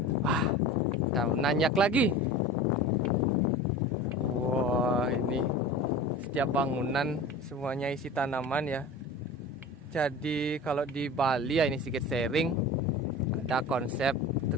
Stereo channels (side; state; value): both; normal; correlation 0.35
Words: Wah, kita nanyak lagi. Wah, ini setiap bangunan semuanya isi tanaman ya. Jadi kalau di Bali ya, ini sedikit sharing, ada konsep